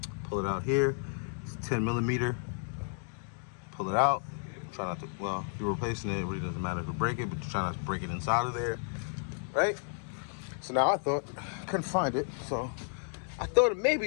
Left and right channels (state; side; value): silent; right; 56 dB below the other